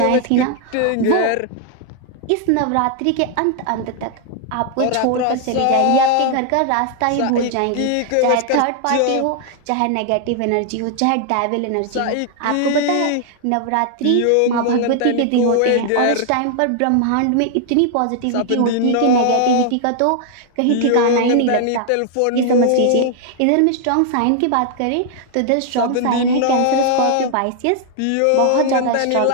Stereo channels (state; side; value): different; both; correlation 0.00